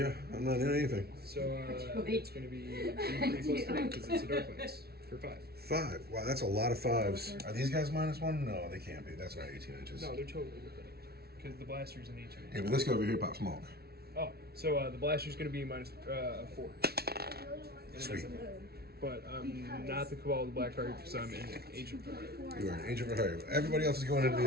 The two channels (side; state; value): left; late; 0.45 ms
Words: I'm not in anything. So it's going to be 3 plus 3 because it's a dark lens for 5. 5. Wow, that's a lot of 5s. Are these guys -1? No, they can't be. That's not 18 inches. No, they're totally within it because the blaster's an 18. Yeah, but this guy over here pop smoke. Oh, so the blaster's going to be -4. And it Sweet. doesn't matter. But I'm not the Cabal of the Black Heart because I'm an agent for it. You are an agent for hire. Everybody else is going into the